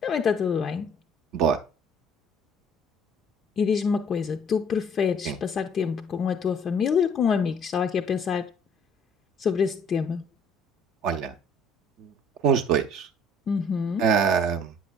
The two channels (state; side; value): normal; both; correlation 0.57